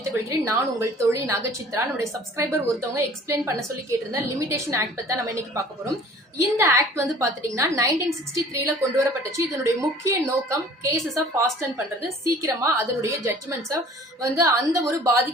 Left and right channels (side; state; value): both; normal; correlation 0.49